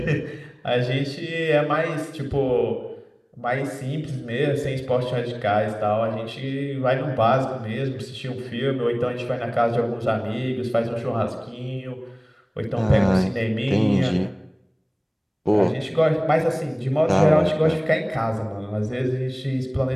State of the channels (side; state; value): both; identical; correlation 1.00